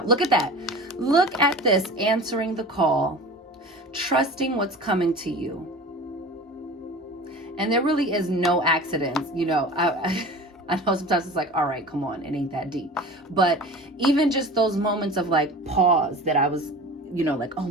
Look at that. Look at this. Answering the call. Trusting what's coming to you. And there really is no accidents. You know, I know sometimes it's like, all right, come on. It ain't that deep. But even just those moments of like pause that I was, you know, like, oh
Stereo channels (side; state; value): both; normal; correlation 0.37